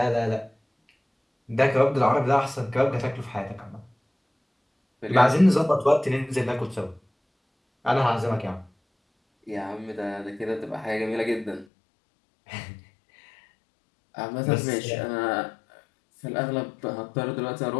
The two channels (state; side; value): drops out; right; at 11.7 s